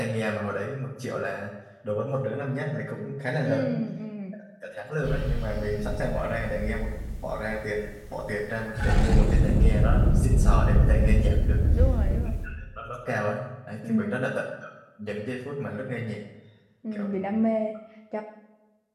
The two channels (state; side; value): identical; both; correlation 1.00